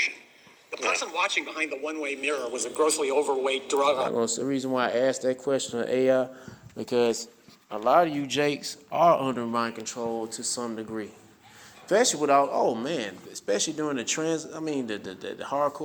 The person watching behind the one-way mirror was a grossly overweight drug. That's the reason why I asked that question of AI, because a lot of you jakes are under mind control to some degree. Especially especially during the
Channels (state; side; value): identical; both; correlation 1.00